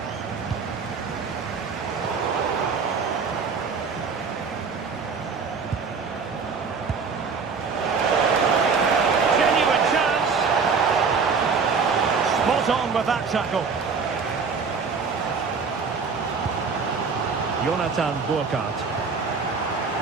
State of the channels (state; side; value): quieter; left; 5.3 dB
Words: On with that tackle. Jonathan Burkhardt.